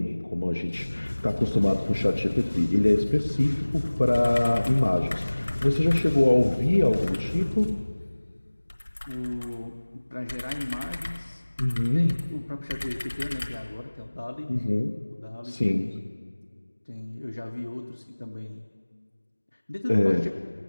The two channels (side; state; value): both; inverted; correlation -1.00